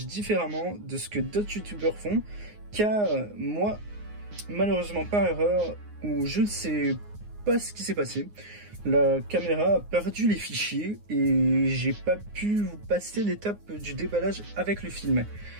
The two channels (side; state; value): left; late; 9.6 ms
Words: différemment de ce que d'autres youtubeurs font. Car moi, malheureusement par erreur, ou je ne sais pas ce qui s'est passé, la caméra a perdu les fichiers et j'ai pas pu vous passer l'étape du déballage avec le film